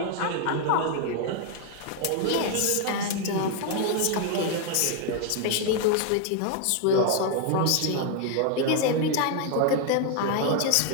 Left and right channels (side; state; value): both; different; correlation 0.00